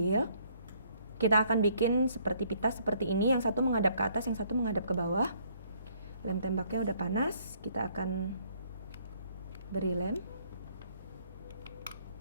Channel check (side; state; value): both; inverted; correlation -0.64